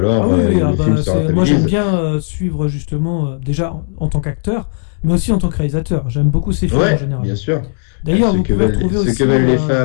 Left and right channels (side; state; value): right; silent; digital silence